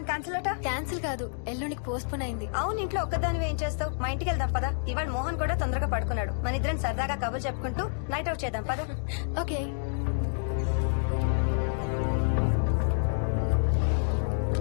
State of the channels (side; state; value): right; silent; digital silence